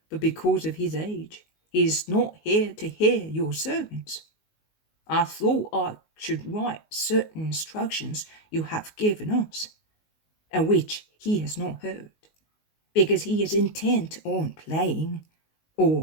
but because of his age, he is not here to hear your sermons. I thought I should write certain instructions you have given us, and which he has not heard, because he is intent on playing,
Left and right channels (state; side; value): late; right; 19 ms